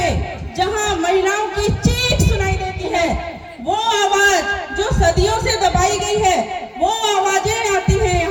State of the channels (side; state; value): both; identical; correlation 1.00